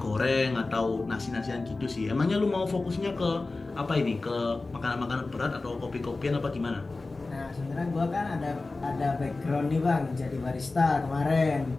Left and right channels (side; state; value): right; quieter; 3.4 dB